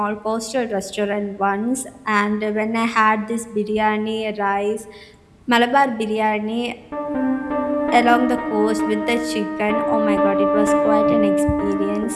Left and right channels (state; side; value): identical; both; correlation 1.00